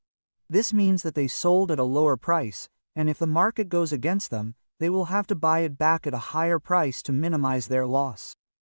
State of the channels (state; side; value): inverted; both; correlation -1.00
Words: This means that they sold at a lower price, and if the market goes against them, they will have to buy it back at a higher price to minimize their loss.